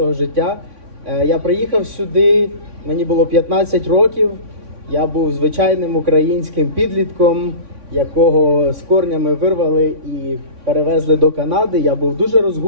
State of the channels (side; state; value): left; late; 3.6 ms